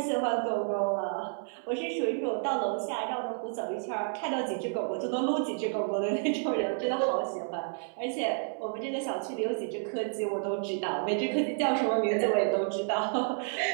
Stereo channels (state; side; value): silent; left; 57 dB below the other